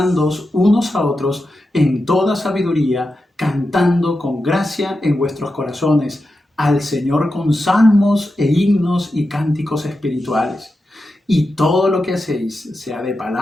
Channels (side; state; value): both; normal; correlation 0.90